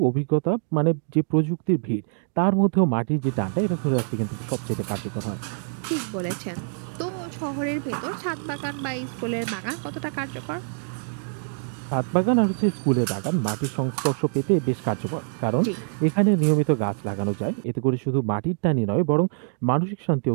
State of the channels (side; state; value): left; silent; 60 dB below the other